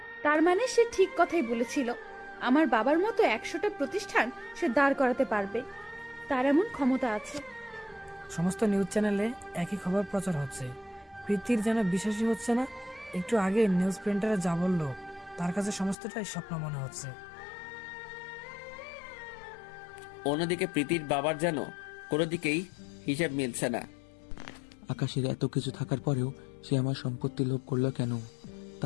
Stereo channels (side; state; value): right; drops out; at 16.0 s